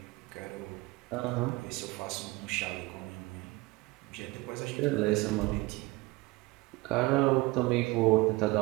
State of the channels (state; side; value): quieter; left; 22.3 dB